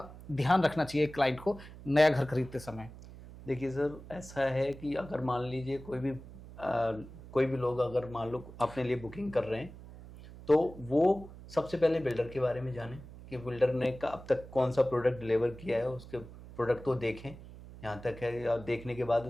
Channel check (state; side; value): noise; right; hum, 16 dB below the sound